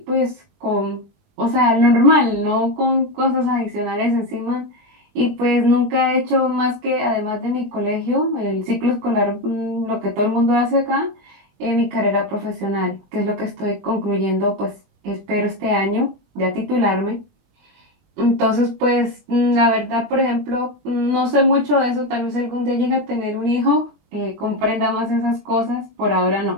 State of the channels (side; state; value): left; late; 21 ms